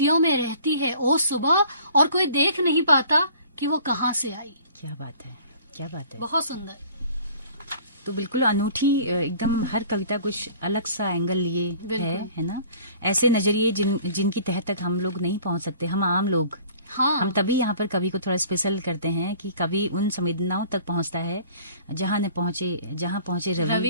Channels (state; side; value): inverted; both; correlation -0.50